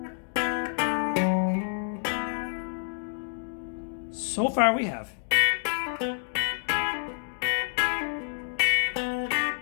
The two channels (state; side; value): silent; right; digital silence